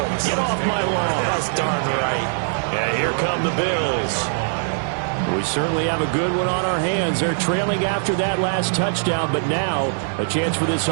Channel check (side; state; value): left; silent; digital silence